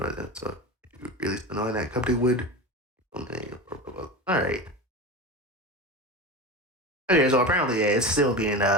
you really knowing that company would. All right. Okay, so apparently, yeah, it's still being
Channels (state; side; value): normal; both; correlation 0.26